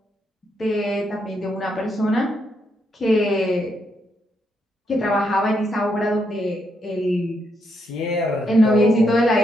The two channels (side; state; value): both; normal; correlation 0.78